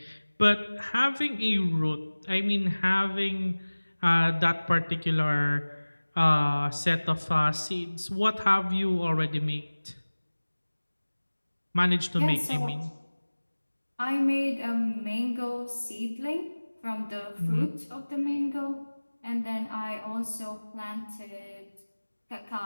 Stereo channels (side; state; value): both; inverted; correlation -1.00